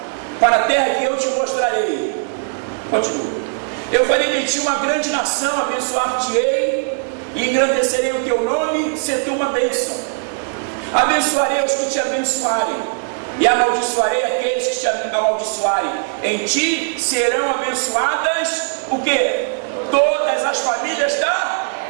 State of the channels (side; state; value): left; silent; 66 dB below the other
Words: para a terra que eu te mostrarei. Continua. Eu farei de ti uma grande nação, abençoar-te-ei e engrandecerei o teu nome, ser tu uma bênção. Abençoarei os que te abençoarem, e amaldiçoarei aqueles que te amaldiçoarem. Em ti serão abençoadas o quê? Todas as famílias da